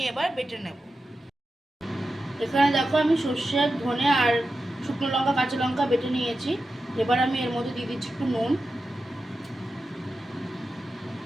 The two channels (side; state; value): both; normal; correlation 0.91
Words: এবার বেটে নেব। এখানে দেখো আমি সর্ষে, ধনে আর শুকনো লঙ্কা, কাঁচা লঙ্কা বেটে নিয়েছি। এবার আমি এর মধ্যে দিয়ে দিচ্ছি একটু নুন,